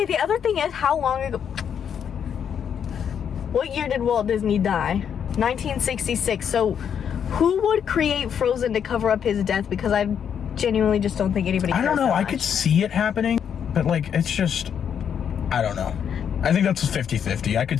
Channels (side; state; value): right; quieter; 8.1 dB